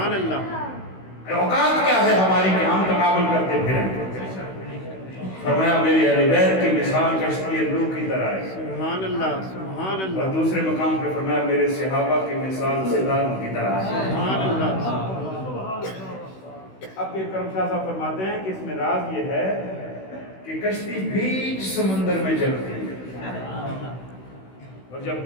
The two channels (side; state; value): right; late; 16 ms